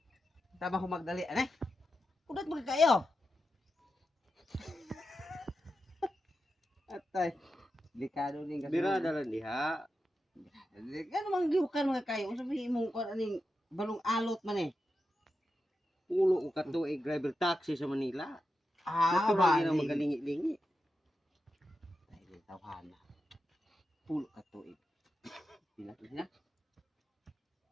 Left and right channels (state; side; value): normal; both; correlation 0.89